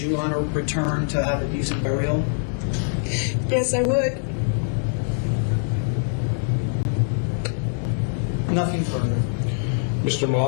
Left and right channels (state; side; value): silent; right; 63 dB below the other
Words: want her returned to have a decent burial? Yes, I would. Nothing further. Mr.